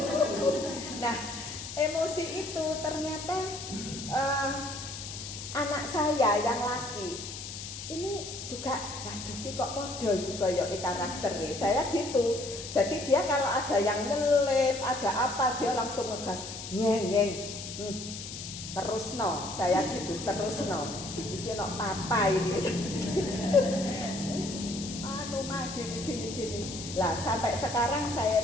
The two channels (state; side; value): noise; left; hiss, 9 dB below the sound